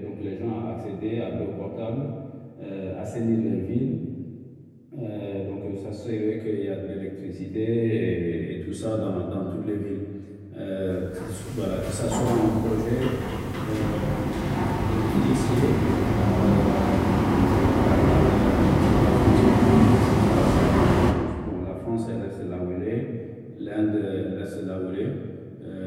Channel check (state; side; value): identical; both; correlation 1.00